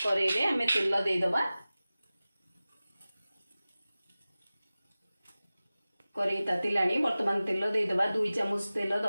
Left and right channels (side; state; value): both; inverted; correlation -0.97